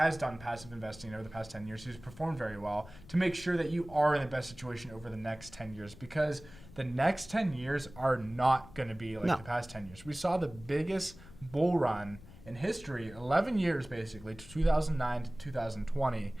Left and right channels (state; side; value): noise; left; rumble, 19 dB below the sound